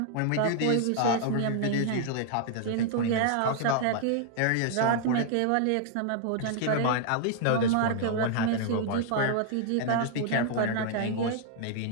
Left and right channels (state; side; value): different; both; correlation 0.00